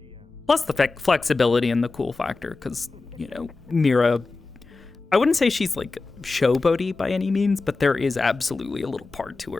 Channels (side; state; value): right; quieter; 3.7 dB